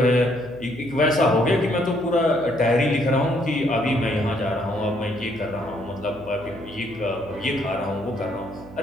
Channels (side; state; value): right; noise; hum, 19 dB below the sound